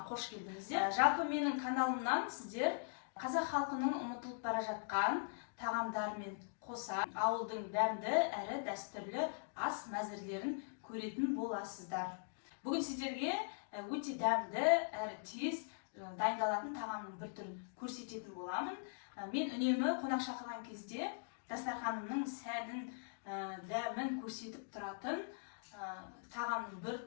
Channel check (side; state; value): right; silent; digital silence